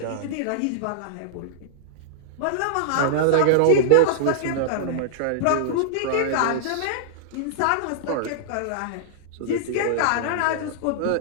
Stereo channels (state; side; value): different; both; correlation -0.01